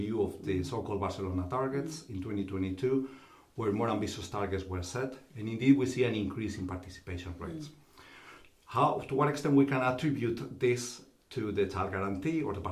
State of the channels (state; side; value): identical; both; correlation 1.00